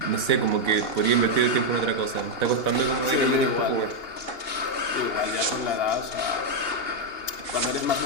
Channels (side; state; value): right; late; 2.7 ms